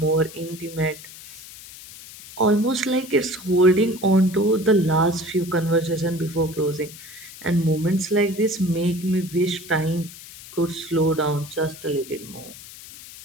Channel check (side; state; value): left; noise; hiss, 16 dB below the sound